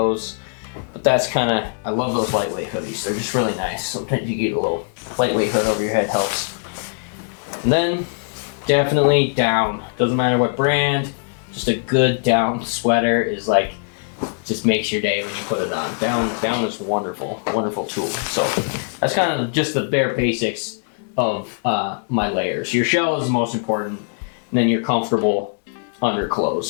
But that's kind of, I love those lightweight hoodies. They're just really nice. Sometimes you get a little lightweight hood over your head helps. And then, definitely down. Doesn't matter what brand, just a good down sweater is like, just makes your day when you put it on. Down is wonderful, wonderful tool. So that's kind of just the bare basics of my layers. Your shell is the most important, and then your comfortable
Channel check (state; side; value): silent; right; digital silence